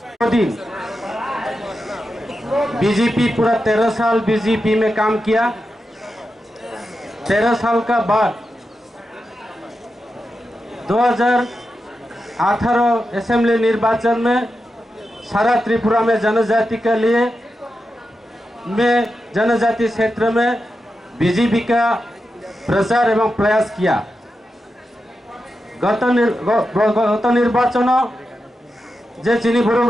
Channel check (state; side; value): normal; both; correlation 0.89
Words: दिन बीजेपी पूरा 13 साल बीजेपी में काम किया। 13 साल का बाद 2018 असेंबली निर्वाचन में सारा त्रिपुरा में जनजाति के लिए जनजाति क्षेत्र में बीजेपी का प्रचार एवं प्रयास किया। गत निर्वाचन जे चिनी